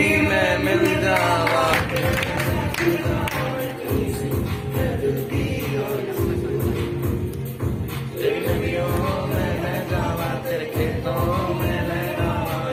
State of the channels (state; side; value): identical; both; correlation 1.00